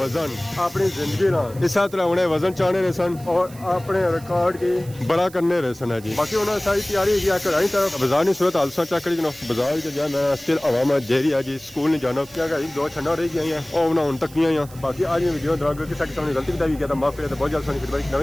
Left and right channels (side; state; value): right; noise; hiss, 21 dB below the sound